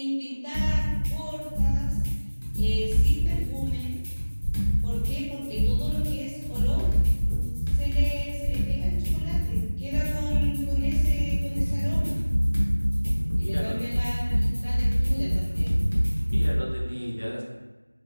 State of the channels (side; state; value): both; inverted; correlation -1.00